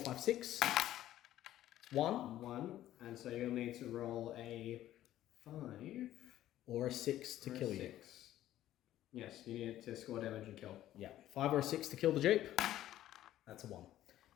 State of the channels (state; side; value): quieter; right; 13.3 dB